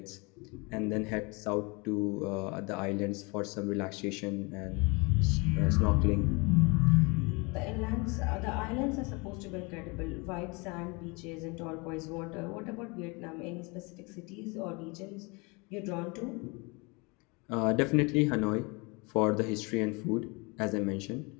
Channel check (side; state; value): right; quieter; 28.4 dB